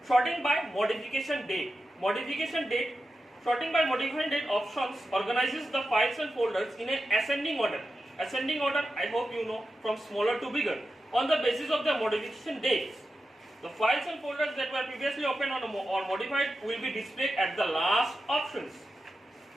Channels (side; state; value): both; normal; correlation 0.90